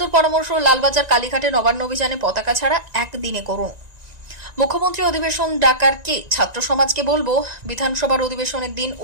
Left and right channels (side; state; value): left; late; 1.9 ms